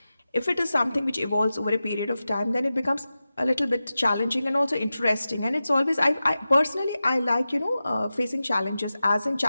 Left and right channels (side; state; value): both; inverted; correlation -0.94